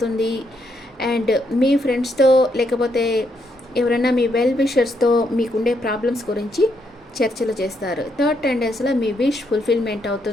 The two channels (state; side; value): normal; both; correlation 0.76